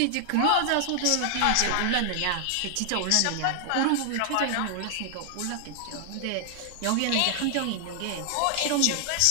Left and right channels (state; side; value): different; both; correlation 0.00